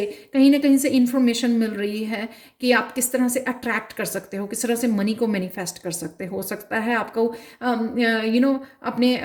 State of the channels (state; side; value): identical; both; correlation 1.00